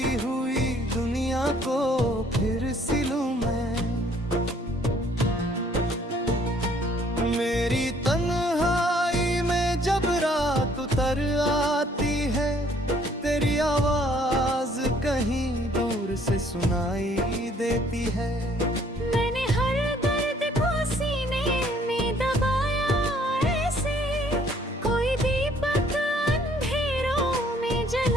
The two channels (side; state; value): both; normal; correlation 0.61